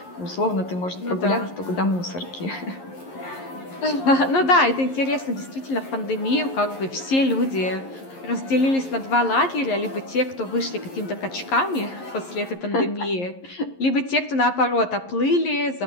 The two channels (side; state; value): right; late; 11 ms